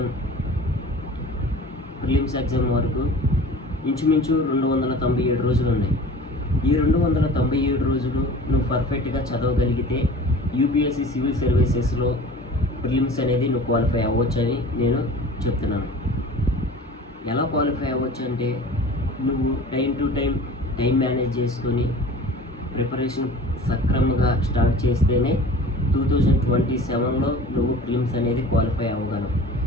ప్రిలిమ్స్ ఎగ్జామ్ వరకు ఇంచుమించు 297 రోజులు ఉన్నాయి. ఈ 297 రోజులు నువ్వు పర్ఫెక్ట్గా చదవగలిగితే యూపీఎస్సీ సివిల్ సర్వీసెస్లో ప్రిలిమ్స్ అనేది నువ్వు క్వాలిఫై అవ్వచ్చని నేను చెప్తున్నాను. ఎలా క్వాలిఫై అవ్వచ్చు అంటే నువ్వు టైం మేనేజ్ చేసుకొని ప్రిపరేషన్ సక్రమంగా స్టార్ట్ చేస్తేనే 2027లో నువ్వు ప్రిలిమ్స్ అనేది క్వాలిఫై అవ్వగలవు.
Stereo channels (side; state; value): both; normal; correlation 0.41